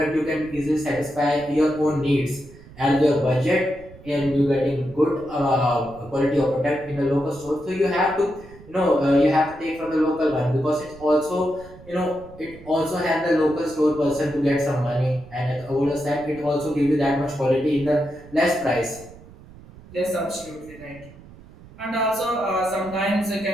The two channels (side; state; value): right; noise; rumble, 20 dB below the sound